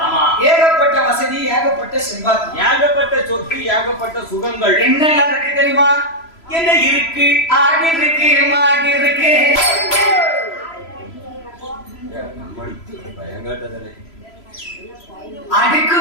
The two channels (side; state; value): right; late; 3.0 ms